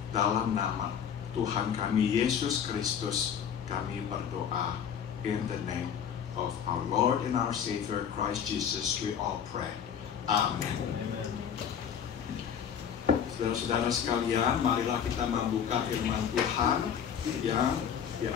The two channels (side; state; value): right; quieter; 8.1 dB